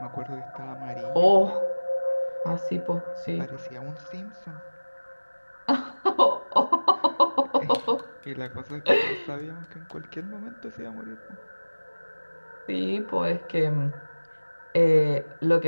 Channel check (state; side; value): inverted; both; correlation -1.00